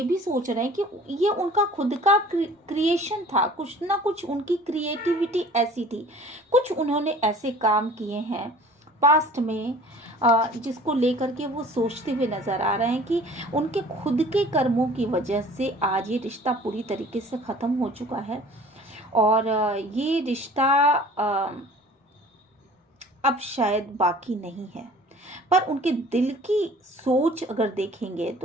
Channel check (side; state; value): both; normal; correlation 0.47